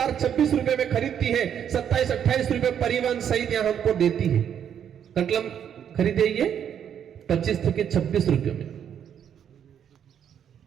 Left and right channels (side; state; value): left; quieter; 8.9 dB